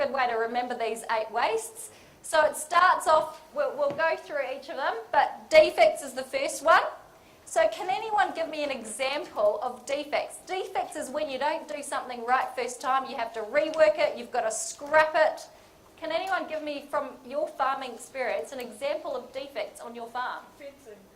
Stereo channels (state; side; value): identical; both; correlation 1.00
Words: way to remember these 8 wastes. So it starts off, we'll go through each of them, but defects is the first one. So can anyone give me an example of defects? Defects is when you don't do something right first time, you have to rework it, you've got to scrap it. Can anyone give me, from your farming experience, an example of defects on your farm? Fencing.